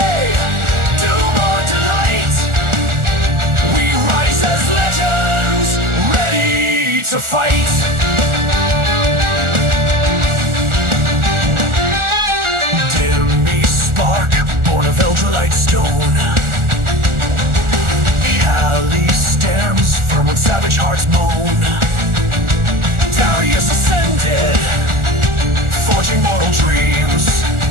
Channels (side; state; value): left; late; 1.4 ms